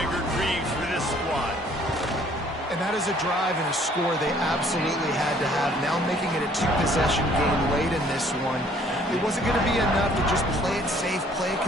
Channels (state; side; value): normal; both; correlation 0.59